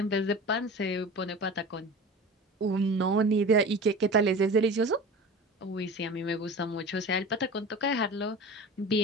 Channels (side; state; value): both; normal; correlation 0.35